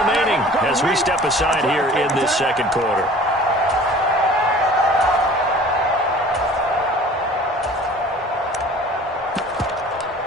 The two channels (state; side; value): normal; both; correlation 0.46